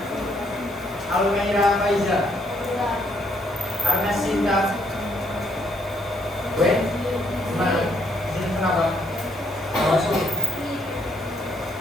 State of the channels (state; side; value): normal; both; correlation 0.71